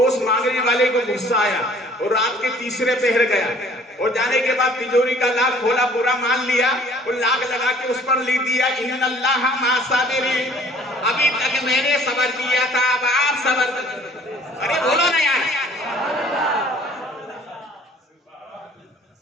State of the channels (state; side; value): normal; both; correlation 0.54